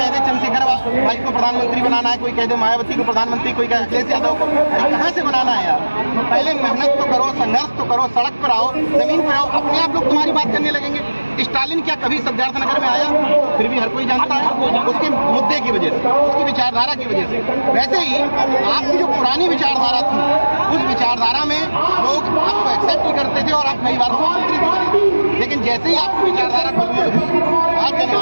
दे चंद्रशेखर भाई को प्रधानमंत्री बनाना है, कोई कह दे मायावती को प्रधानमंत्री, कोई कह अखिलेश यादव को। कहाँ से बनाना है यार? पहले मेहनत तो करो, संघर्ष तो करो, सड़क पर आओ, जमीन पर आओ, अपने आप लोग तुम्हारी बात करने लगेंगे। स्टालिन क्या कभी सिद्धार्थनगर में आया? फिर भी हर कोई जानता है, उसके मुद्दे की वजह से, उसकी विचारधारा की वजह से। वैसे ही आपकी जो पुरानी विचारधारा थी, उस विचारधारा में लोग आपको एक्सेप्ट ही करते थे और आप कई बार मुख्यमंत्री भी बने। लेकिन जैसे ही आपकी विचारधारा बदली, आज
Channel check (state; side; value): inverted; both; correlation -1.00